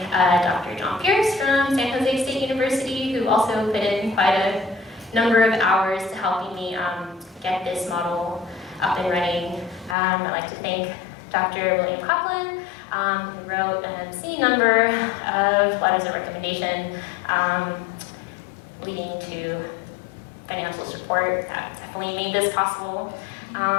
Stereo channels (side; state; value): right; drops out; at 10.0 s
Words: Dr. John Pierce from San Jose State University, who also put in quite a number of hours to helping me get this model up and running. I'd like to thank Dr. William Coughlin, who wrote an obscene number of letters of recommendation leading to financial support. That definitely made this possible.